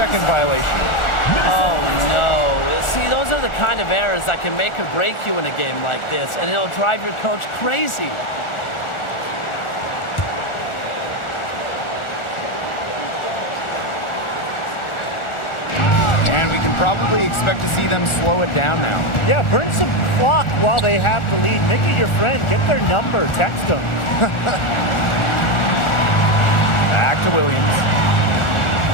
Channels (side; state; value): right; late; 1.4 ms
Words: violation. Oh, no. See, those are the kind of errors that can make or break you in a game like this, and it'll drive your coach crazy. Probably expect to see them slow it down now. Yeah, burn some clock while they have the lead. Make it your friend. Get their number. Text them. Back to Williams.